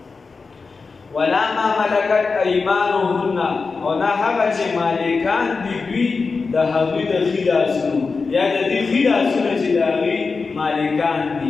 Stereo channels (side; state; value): right; quieter; 4.5 dB